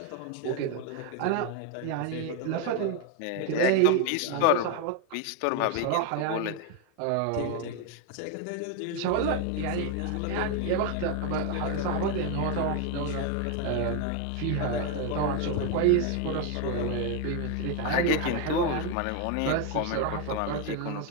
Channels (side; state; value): both; different; correlation 0.01